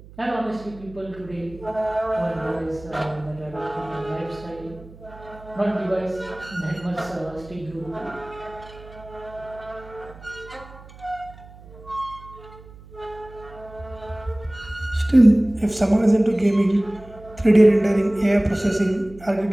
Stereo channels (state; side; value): noise; right; hum, 19 dB below the sound